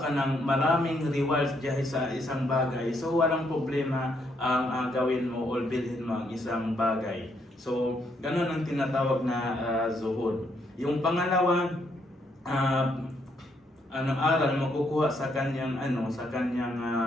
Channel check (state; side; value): normal; both; correlation 0.74